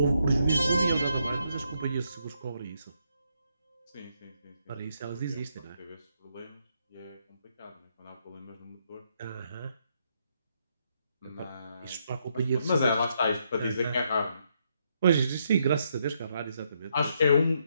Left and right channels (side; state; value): both; inverted; correlation -0.76